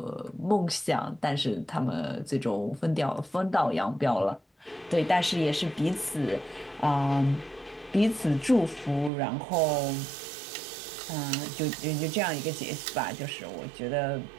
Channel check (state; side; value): drops out; left; at 9.1 s